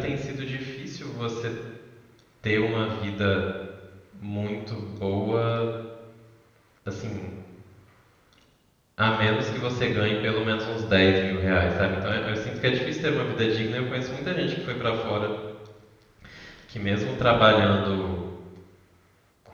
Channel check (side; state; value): both; identical; correlation 1.00